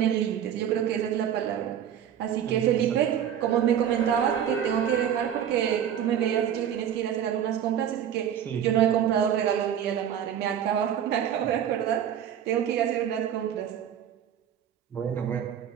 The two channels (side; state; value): left; quieter; 9.5 dB